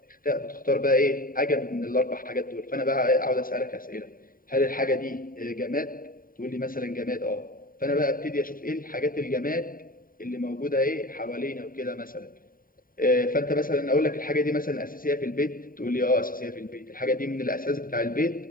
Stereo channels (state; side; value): late; right; 0.41 ms